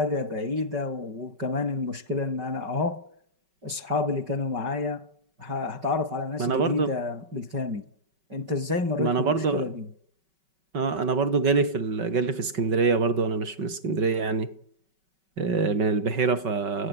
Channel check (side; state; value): left; late; 5.3 ms